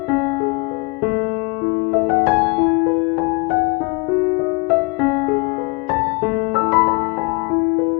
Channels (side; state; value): right; quieter; 29.2 dB